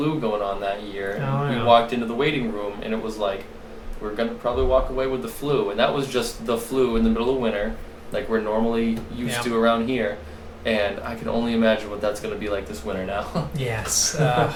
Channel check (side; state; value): both; identical; correlation 1.00